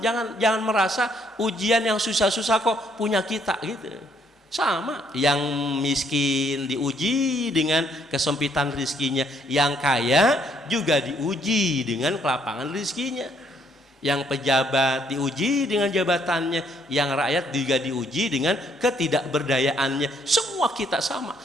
Jangan merasa ujian yang susah-susah kok punya kita, gitu. Sama, yang miskin diuji dengan kesempitan rizkinya, yang kaya juga diuji dengan kelapangan rizkinya, yang pejabat diuji dengan jabatannya, yang rakyat juga diuji dengan ketidakberdayaannya. Semua kita sama.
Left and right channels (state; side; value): normal; both; correlation 0.68